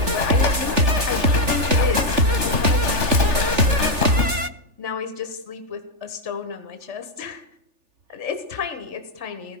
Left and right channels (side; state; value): left; late; 3.4 ms